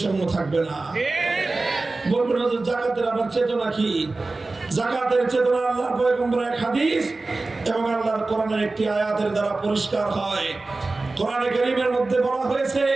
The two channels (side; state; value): left; quieter; 3.4 dB